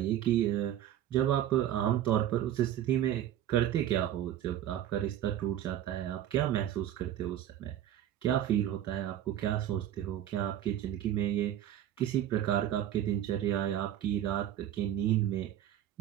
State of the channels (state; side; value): quieter; left; 11.5 dB